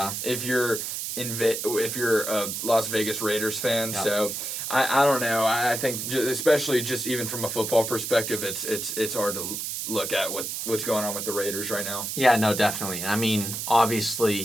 If you're a Las Vegas Raiders fan, Yep. So I don't know. I think especially just even from a football perspective, it's hard to look at what's going on with the Raiders right now. Yeah, no, definitely. I mean,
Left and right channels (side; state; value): right; noise; hiss, 4 dB below the sound